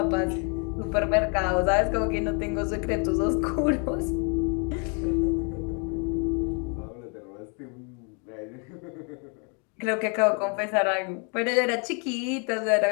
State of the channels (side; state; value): right; quieter; 36.4 dB